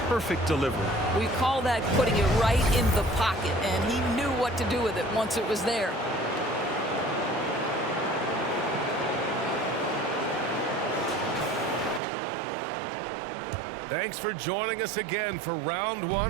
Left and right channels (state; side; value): drops out; left; at 12.0 s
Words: perfect delivery. We call that putting it right in the pocket, and he knew what to do with it once it was there. Thanks for joining us again for round